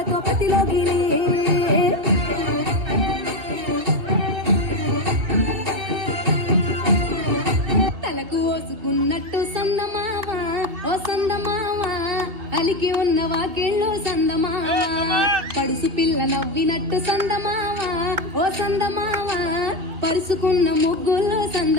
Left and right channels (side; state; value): left; late; 3.0 ms